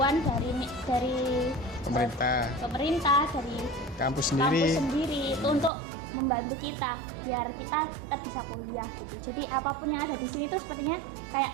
dari pemerintah, dari kampus kampus sendiri. sendiri itu untuk membantu kita biar kita tetap bisa kuliah gitu. Jadi apapun yang ada di sini itu sepertinya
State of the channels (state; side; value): drops out; left; at 5.7 s